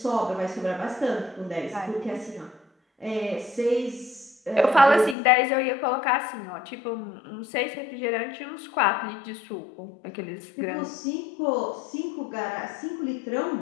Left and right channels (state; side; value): drops out; right; at 5.2 s